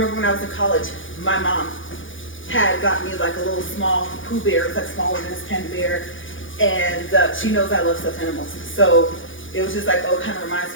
when I was in college, my mom had got me like a little small Pooh Bear. It's like smaller than this panda bear, and she knows I love stuffed animals. So it was just like, oh, it kind of reminds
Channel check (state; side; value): late; right; 0.57 ms